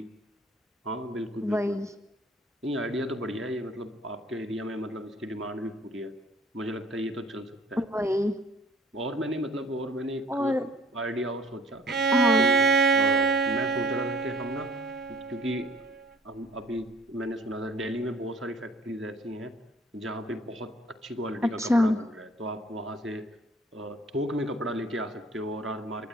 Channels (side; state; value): both; normal; correlation 0.53